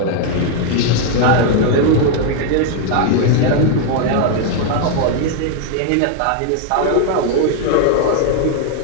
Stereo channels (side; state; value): both; different; correlation 0.00